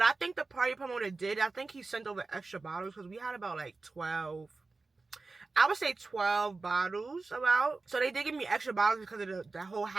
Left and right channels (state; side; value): quieter; left; 3.8 dB